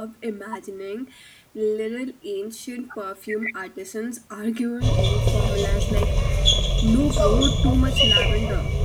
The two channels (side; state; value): both; identical; correlation 1.00